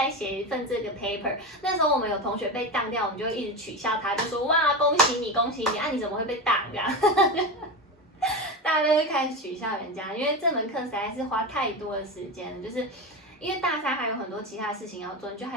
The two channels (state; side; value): normal; both; correlation 0.20